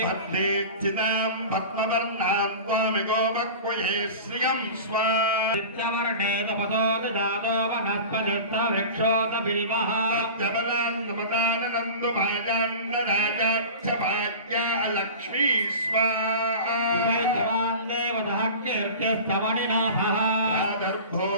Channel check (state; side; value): inverted; both; correlation -0.35